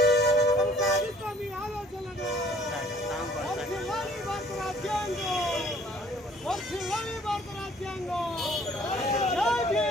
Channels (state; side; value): normal; both; correlation 0.57